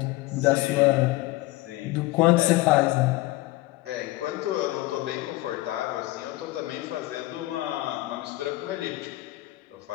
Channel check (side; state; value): right; quieter; 18.9 dB